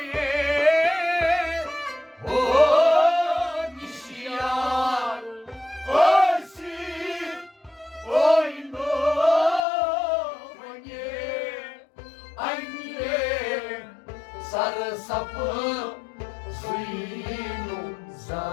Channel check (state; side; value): drops out; right; at 9.6 s